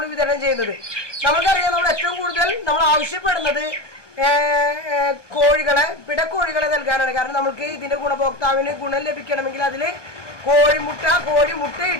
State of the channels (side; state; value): right; late; 1.1 ms